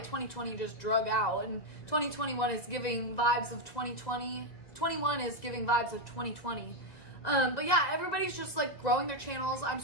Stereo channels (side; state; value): right; late; 2.0 ms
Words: 2020 just drug out, and 2021 is giving vibes of 2020. 21 is giving vibes of 2020. But yeah, everybody's just like growing their channels. I'm